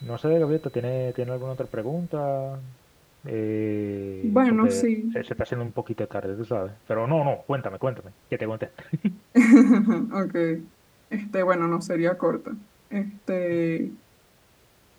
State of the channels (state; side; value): identical; both; correlation 1.00